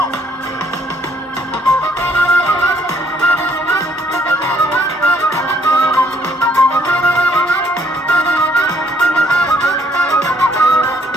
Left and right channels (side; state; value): both; normal; correlation 0.65